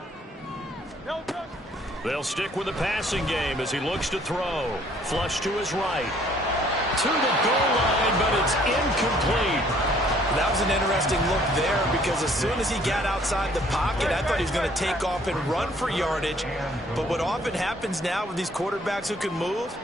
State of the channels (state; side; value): normal; both; correlation 0.61